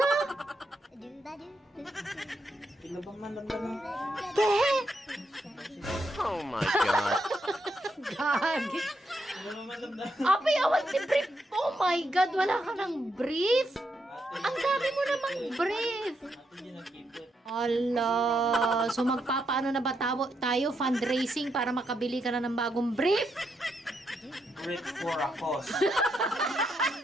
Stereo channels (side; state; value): both; normal; correlation 0.80